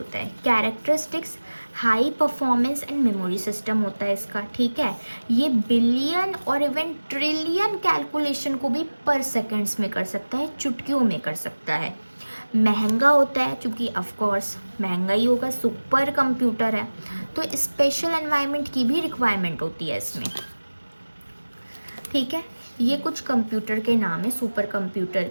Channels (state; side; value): inverted; both; correlation -1.00